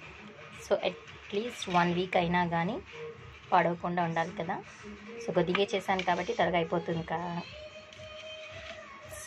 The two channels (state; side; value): identical; both; correlation 1.00